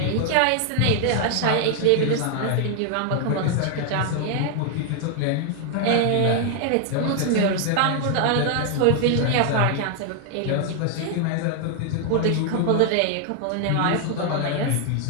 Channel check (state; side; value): different; both; correlation 0.00